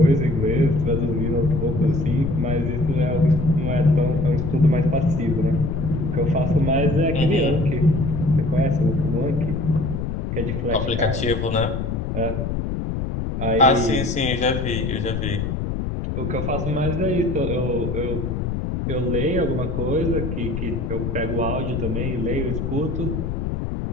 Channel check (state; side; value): noise; left; rumble, 2 dB below the sound